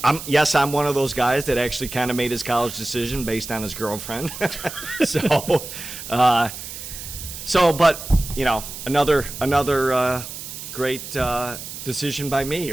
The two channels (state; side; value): noise; right; hiss, 10 dB below the sound